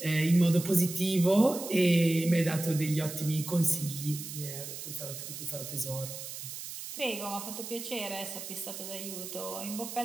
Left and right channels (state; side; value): noise; right; hiss, 9 dB below the sound